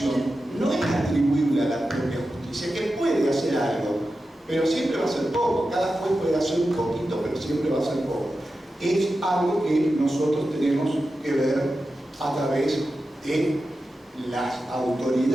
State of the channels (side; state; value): both; normal; correlation 0.92